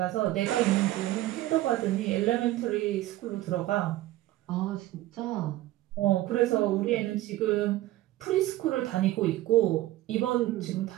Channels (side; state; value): left; quieter; 16.1 dB